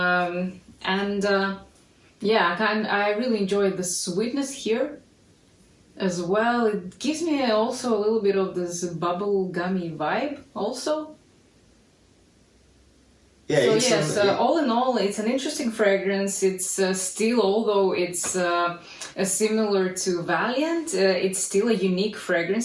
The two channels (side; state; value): both; identical; correlation 1.00